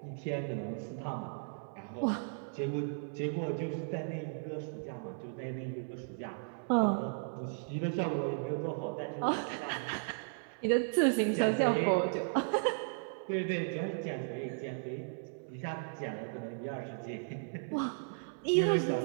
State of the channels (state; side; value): silent; left; 54 dB below the other